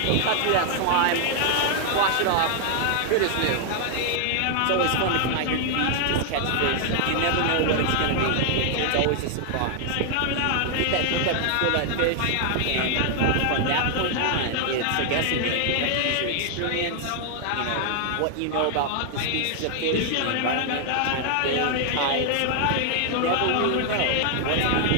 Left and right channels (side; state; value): both; different; correlation 0.00